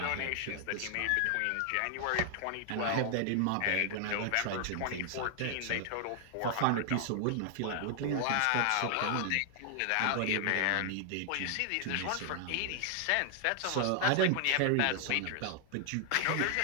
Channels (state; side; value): different; both; correlation 0.00